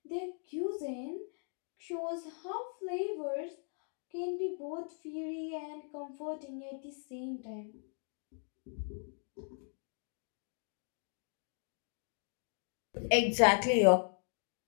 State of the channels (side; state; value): right; silent; 53 dB below the other